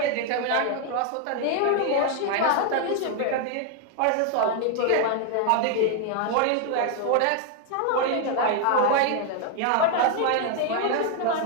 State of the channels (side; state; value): both; different; correlation 0.00